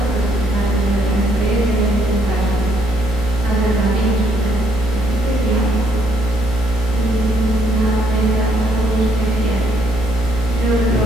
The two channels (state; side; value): normal; both; correlation 0.71